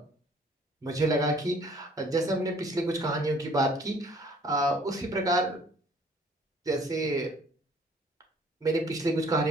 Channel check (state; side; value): normal; both; correlation 0.57